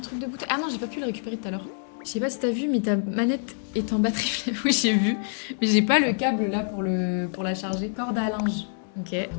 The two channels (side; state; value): right; silent; digital silence